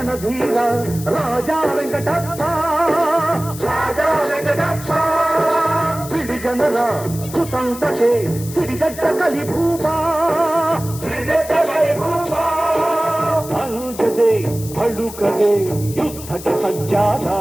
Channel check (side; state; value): left; noise; hiss, 14 dB below the sound